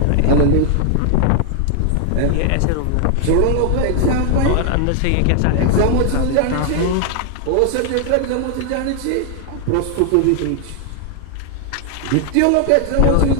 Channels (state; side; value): different; both; correlation 0.00